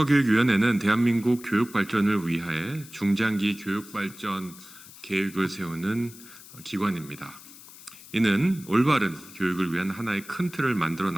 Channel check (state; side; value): noise; left; hiss, 19 dB below the sound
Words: 대한민국 교육 발전을 위하여 중장기 교육 발전 계획을 세우는 기관입니다. 이는 올바른 교육을 위한 하나의 큰 틀을 만들어